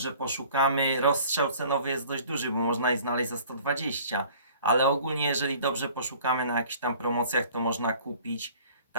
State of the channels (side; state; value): both; inverted; correlation -0.50